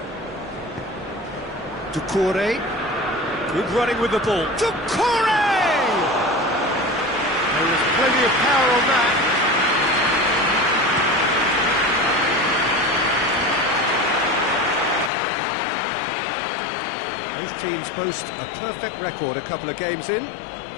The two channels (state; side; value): drops out; right; at 15.1 s